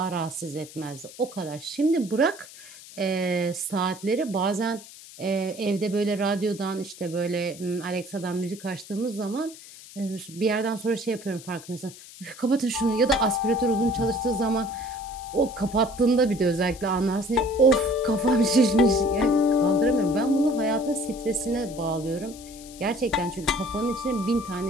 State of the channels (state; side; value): noise; left; hiss, 18 dB below the sound